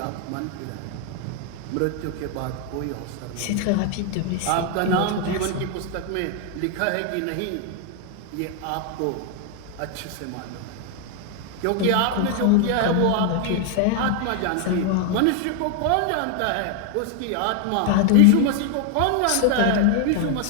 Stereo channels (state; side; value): different; both; correlation 0.00